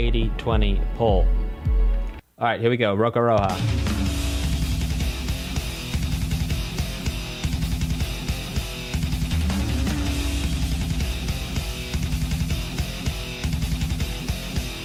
poll. All right, here we go, Rokaroha.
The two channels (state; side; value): identical; both; correlation 1.00